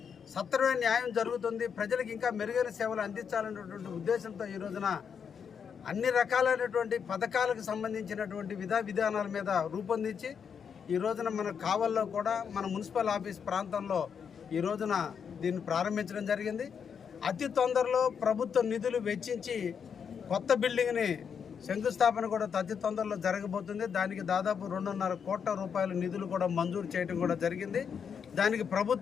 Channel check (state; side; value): quieter; right; 7.0 dB